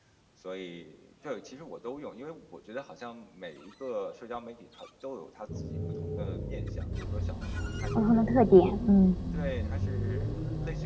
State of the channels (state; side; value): identical; both; correlation 1.00